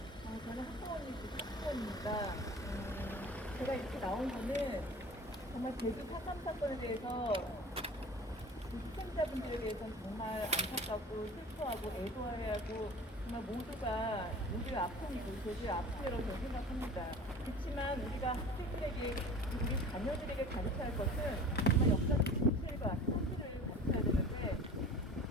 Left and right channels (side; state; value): both; normal; correlation 0.40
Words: 저는 학부모입니다. 제가 이렇게 나온 거는 정말 제주 4.3 사건에 대해서 희생자분들에 대해서는 정말 안타깝고 슬퍼하고 애도해야 하고 정말 모두의 아픔이고 제주의 아픔이라고 저는 생각합니다. 그렇지만 우리가 학생들에게 우리 자녀들에게 가르쳐야 할 것은 정말 역사적 진실과 사실을 가르쳐야 되는데